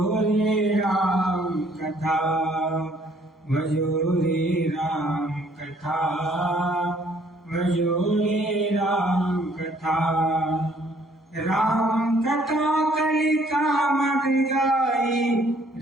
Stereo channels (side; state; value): both; normal; correlation 0.62